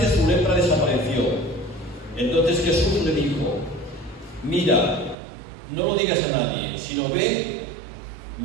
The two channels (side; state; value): left; drops out; at 5.2 s